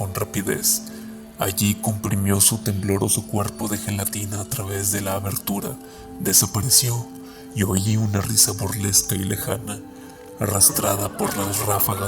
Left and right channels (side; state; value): both; identical; correlation 1.00